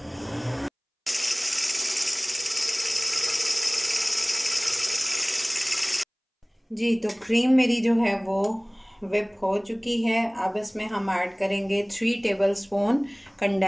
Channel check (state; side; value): identical; both; correlation 1.00